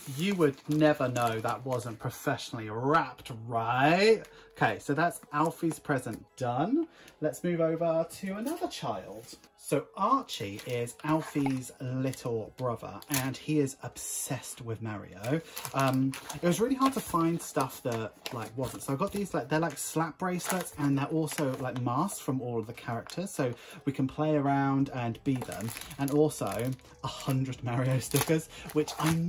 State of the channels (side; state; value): both; identical; correlation 1.00